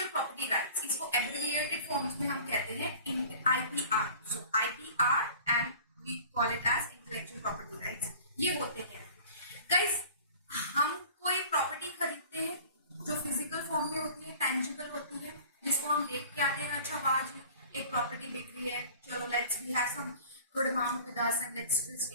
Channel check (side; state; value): both; inverted; correlation -0.45